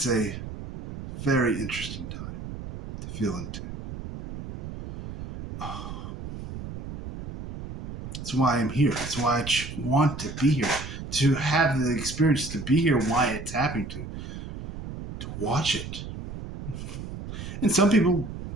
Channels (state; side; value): noise; right; rumble, 9 dB below the sound